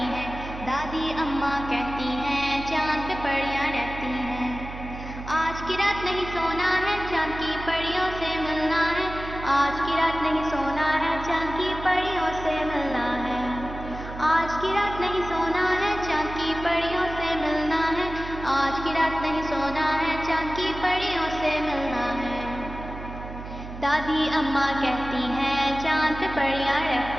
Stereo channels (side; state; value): right; noise; hum, 11 dB below the sound